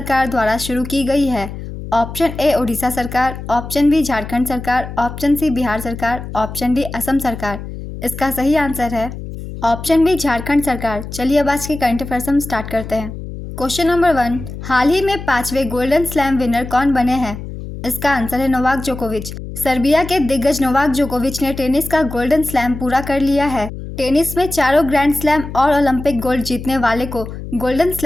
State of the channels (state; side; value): noise; left; hum, 10 dB below the sound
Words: द्वारा शुरू की गई है? ऑप्शन ए ओडिशा सरकार, ऑप्शन बी झारखंड सरकार, ऑप्शन सी बिहार सरकार, ऑप्शन डी असम सरकार। इसका सही आंसर है ऑप्शन बी झारखंड सरकार। चलिए अब आज के करंट अफेयर्स हम स्टार्ट करते हैं। क्वेश्चन नंबर 1, हाल ही में 5वें गोल्डन स्लैम विनर कौन बने हैं? इसका आंसर है नोवाक जोकोविच। सर्बिया के दिग्गज नोवाक जोकोविच ने टेनिस का गोल्डन स्लैम पूरा कर लिया है। टेनिस में चारों ग्रैंड स्लैम और ओलंपिक गोल्ड जीतने वाले को गोल्डन